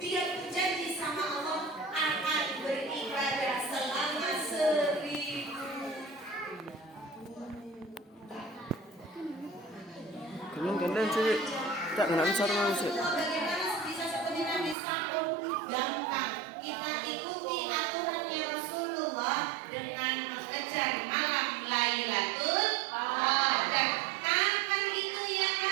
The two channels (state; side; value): drops out; left; at 14.8 s